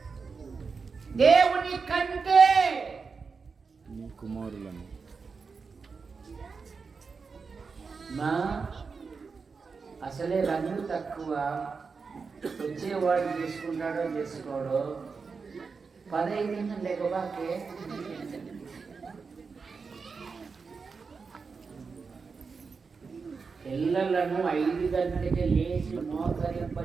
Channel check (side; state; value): left; quieter; 5.0 dB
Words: దేవుని కంటే నీ కుమారులను. మా అసలే రంగు తక్కువ, వచ్చేవాడు చేసుకుంటాడో చేసుకోడో, 15 లేకబాకే పిల్లలను 5 గంటలకి లేచి